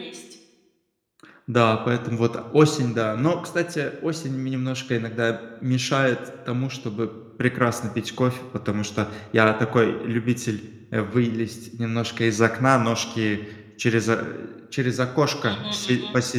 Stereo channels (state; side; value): identical; both; correlation 1.00